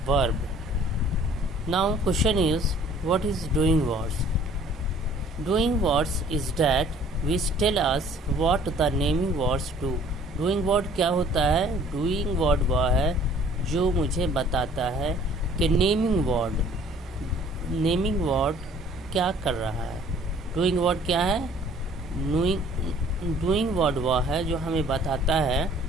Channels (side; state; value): both; normal; correlation 0.54